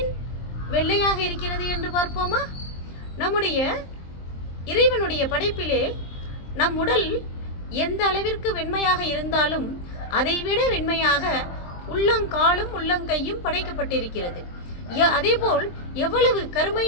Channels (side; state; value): right; late; 23 ms